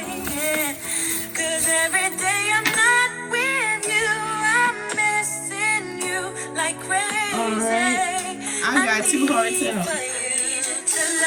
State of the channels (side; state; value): both; identical; correlation 1.00